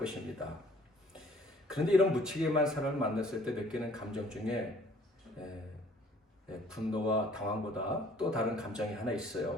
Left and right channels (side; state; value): both; normal; correlation 0.57